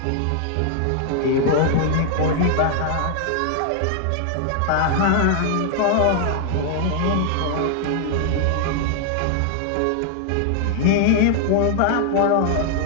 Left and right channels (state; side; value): different; both; correlation 0.00